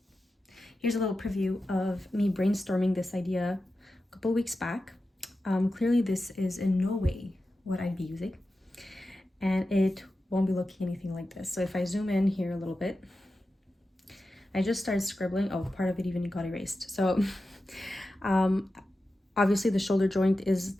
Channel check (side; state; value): both; normal; correlation 0.92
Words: Here's a little preview of me brainstorming this idea a couple weeks back. Clearly this is in no way what I'd be using, and it won't be looking anything like this. So if I zoom in here a little bit, I just started scribbling. Oh, part of it even got erased. So obviously the shoulder joint is